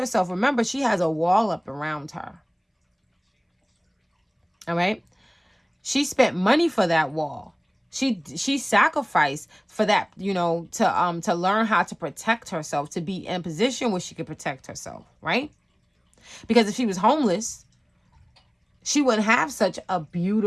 Remember, she has a wall up around her. All right. She spent money for that wall. She sacrificed for that, to learn how to protect herself, to be in a position where she could protect herself, right? Because if she was homeless, she wouldn't have such a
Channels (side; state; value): both; identical; correlation 1.00